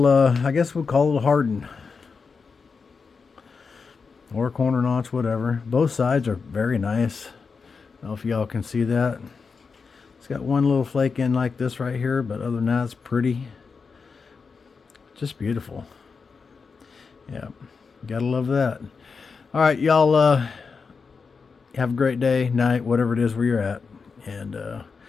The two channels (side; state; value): right; quieter; 5.1 dB